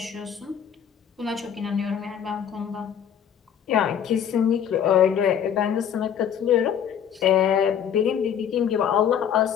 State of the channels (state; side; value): quieter; right; 8.7 dB